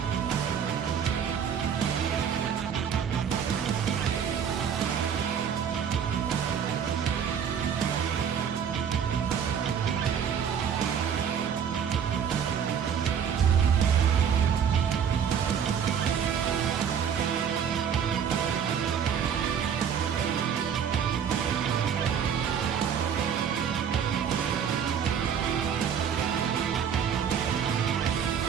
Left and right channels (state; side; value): quieter; left; 7.8 dB